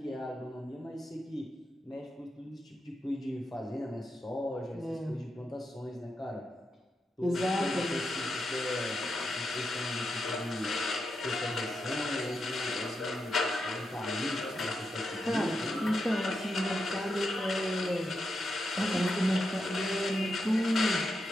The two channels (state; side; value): normal; both; correlation 0.86